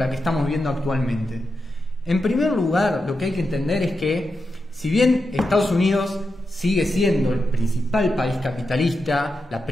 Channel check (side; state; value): both; normal; correlation 0.88